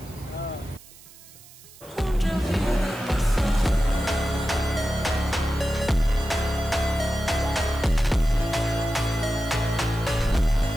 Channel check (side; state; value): right; noise; hiss, 21 dB below the sound